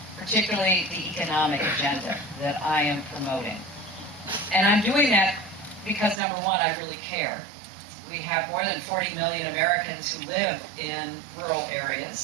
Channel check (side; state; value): left; drops out; at 6.2 s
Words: particularly the economic agenda that I am promoting. And I'm doing that because, number one, I really care. We have more than 40 million Americans who live in rural